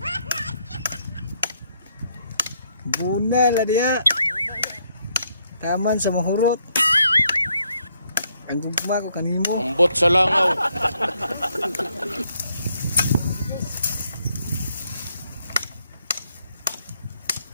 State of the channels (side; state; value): both; inverted; correlation -0.73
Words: Bunal dia. Taman sa mahurot. Ang gugma ko kanimo. Ambot sa langaw.